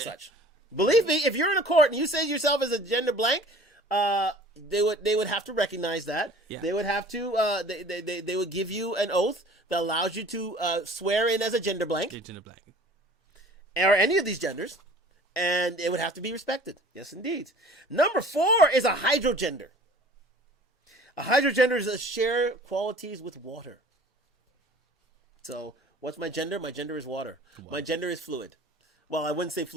such. Believe me, if you're in a court and you say yourself as a gender blank, they would have to recognize that. Yeah. They would have to. They would give you an oath that allows you to swear in as a gender blank. Gender blank. Or any of these genders. And it would have to be respected. Yes, indeed. Number 4 is a hydrogender. A hydrogender is a share qualities with water. So, what's my gender? My gender is water. Wow. My gender is fluid. Well, I wouldn't say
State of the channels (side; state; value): both; normal; correlation 0.47